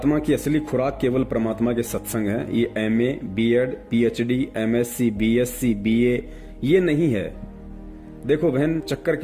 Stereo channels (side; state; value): both; identical; correlation 1.00